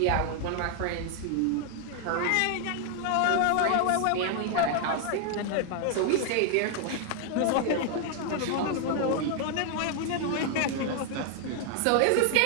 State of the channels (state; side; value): different; both; correlation 0.00